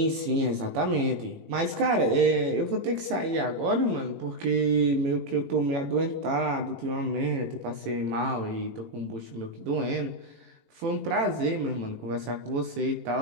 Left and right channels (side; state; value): left; late; 18 ms